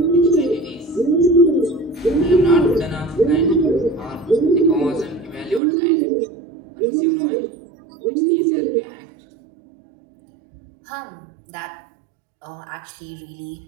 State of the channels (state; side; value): drops out; left; at 5.6 s